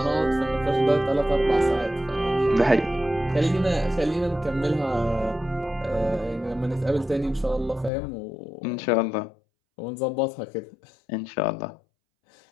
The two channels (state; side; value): drops out; right; at 7.9 s